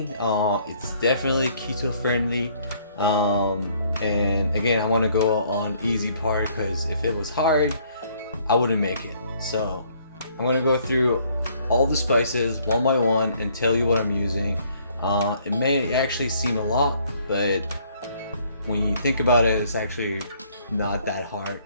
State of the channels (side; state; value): both; inverted; correlation -0.63